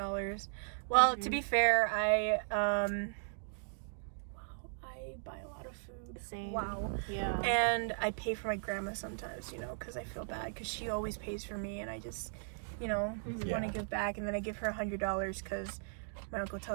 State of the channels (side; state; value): left; silent; digital silence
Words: Well, to be fair, I buy a lot of food. Same. Wow. Yeah. And I pay for my grandma sometimes, you know, because I feel bad because she always pays for me, and I just, you know, want to give back. And then I give her $100 because my uncle